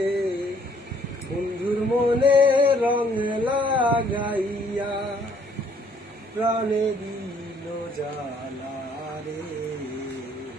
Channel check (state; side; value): normal; both; correlation 0.63